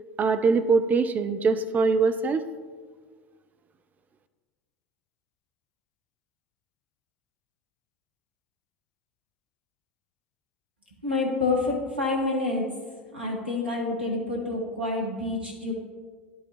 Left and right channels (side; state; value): both; normal; correlation 0.44